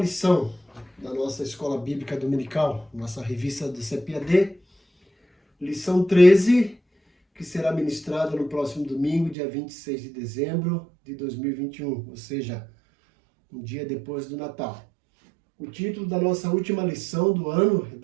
da nossa Escola Bíblica Dominical, nossa revista do CPAD, lição 13, que será ministrada no próximo domingo, dia 26 de dezembro de 2021, ou seja, um dia depois do Natal. O título da nossa última lição do ano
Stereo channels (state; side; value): drops out; left; at 9.3 s